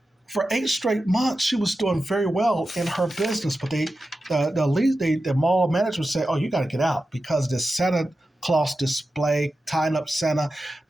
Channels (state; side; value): normal; both; correlation 0.92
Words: for 8 straight months, she was doing very well in her business. But the mall management said, "Oh, you got to get out because this Santa Claus display, tying up Santa,